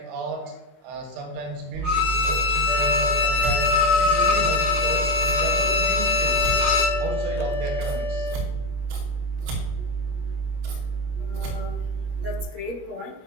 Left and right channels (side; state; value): left; late; 22 ms